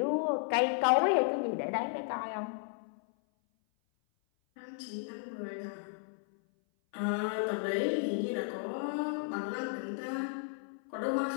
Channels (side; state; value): right; silent; 55 dB below the other